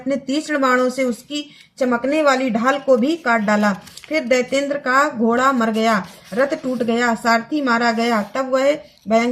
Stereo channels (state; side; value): identical; both; correlation 1.00